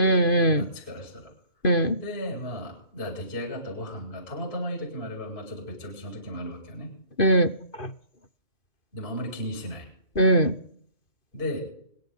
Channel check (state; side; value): late; right; 2.5 ms